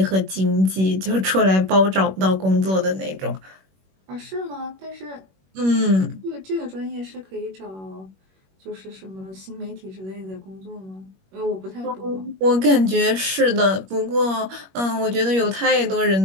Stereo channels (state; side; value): late; left; 21 ms